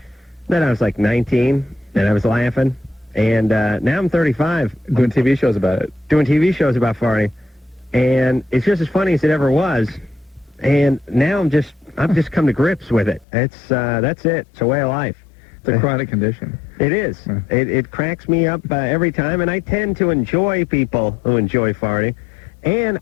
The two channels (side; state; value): right; drops out; at 13.2 s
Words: then I was like 19, and I was laughing, and now I'm 35. Doing TV shows about it. Doing TV shows about farting, and it's just as funny as it ever was, and now I've just come to grips with it. That's it. It's a way of life. It's a chronic condition. It is. It cracks me up every time, and I tend to enjoy people who enjoy farting, and